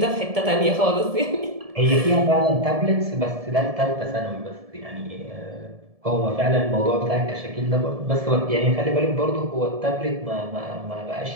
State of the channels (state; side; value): late; left; 1.7 ms